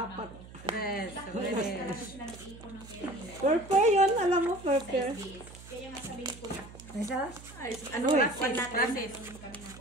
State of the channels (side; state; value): right; noise; hum, 17 dB below the sound